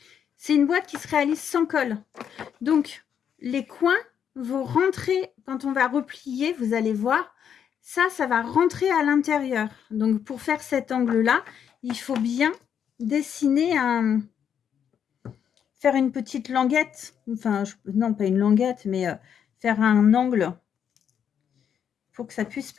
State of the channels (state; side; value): quieter; right; 8.3 dB